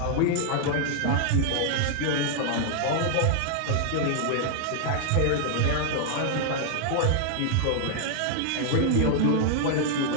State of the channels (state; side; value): different; both; correlation 0.00